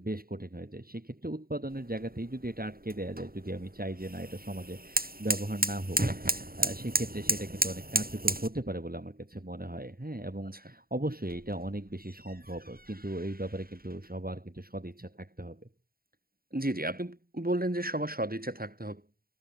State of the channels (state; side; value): late; left; 0.43 ms